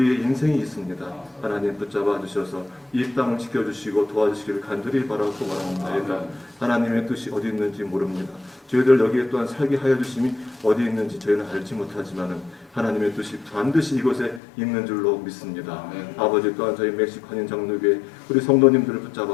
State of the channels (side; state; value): right; drops out; at 14.4 s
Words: 인생이 있습니다. 하나님 붙잡아 주셔서 이 땅을 지켜주시고 도와주시기를 간절히 바라고 원하옵나이다. 하나님의 뜻이 어디 있는지 모릅니다. 저희들 여기에 또한 살게 하여 주심이 어디 있는지 저희는 알지 못하지만은 하나님의 뜻이 반드시 이곳에 있는 줄로 믿습니다. 아버지 또한 저희 멕시코 한인 장로교회 우리 성도님들을